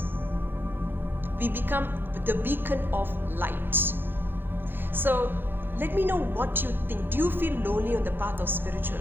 We become the beacon of light. So let me know what you think. Do you feel lonely on the path of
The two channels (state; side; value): late; left; 0.10 ms